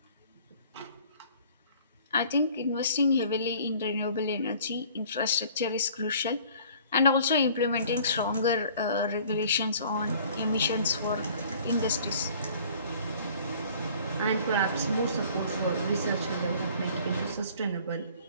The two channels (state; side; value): inverted; both; correlation -0.52